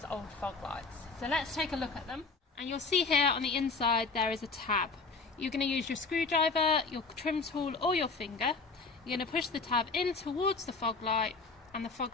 old fog lights. So let's take a look at them. And you'll see here on the inside there is a tab. You're going to use your screwdriver, your trim tool or your finger. You're going to push the tab in towards the fog light and the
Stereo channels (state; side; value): quieter; right; 4.3 dB